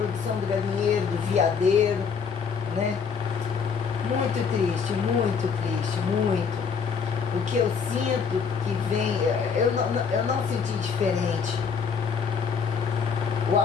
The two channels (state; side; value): quieter; right; 6.1 dB